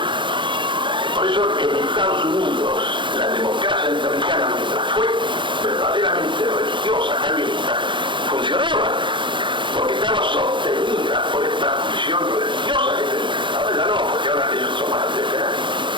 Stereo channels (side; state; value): left; late; 0.23 ms